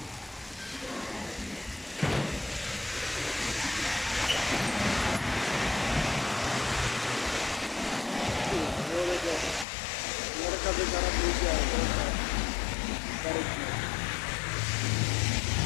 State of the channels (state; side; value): drops out; right; at 9.7 s